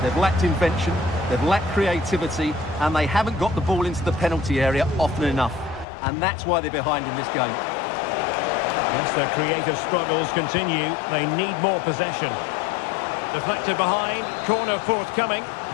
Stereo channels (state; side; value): drops out; right; at 5.9 s